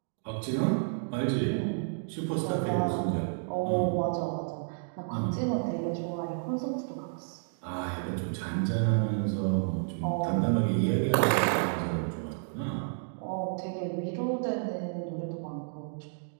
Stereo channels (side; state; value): left; silent; digital silence